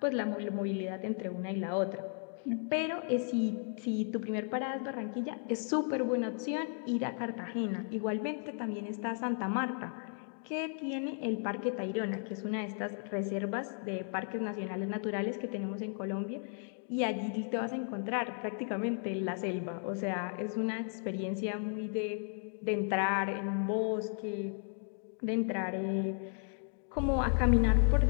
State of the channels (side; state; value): right; silent; 55 dB below the other